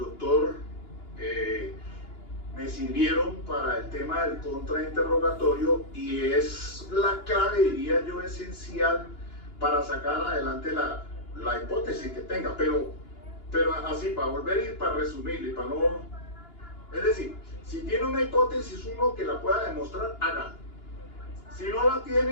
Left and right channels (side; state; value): right; late; 2.9 ms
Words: me sirvieron para el tema del contrainterrogatorio, y es la clave, diría yo, esencial para sacar adelante la hipótesis que tenga, pero así, para volver y para resumir, y para no... Es decir, si tiene una hipótesis uno que la pueda demostrar, hágalo. Si no la